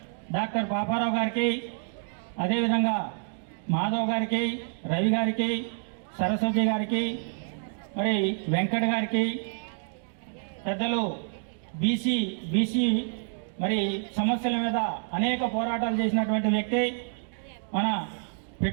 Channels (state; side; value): silent; left; 59 dB below the other